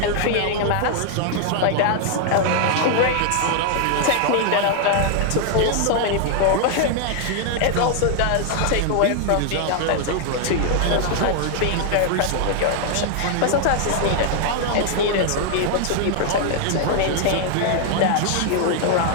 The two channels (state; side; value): different; both; correlation 0.00